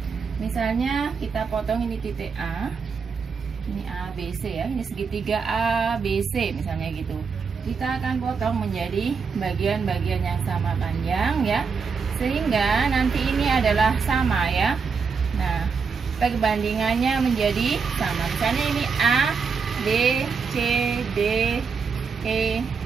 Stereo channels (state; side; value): quieter; left; 5.5 dB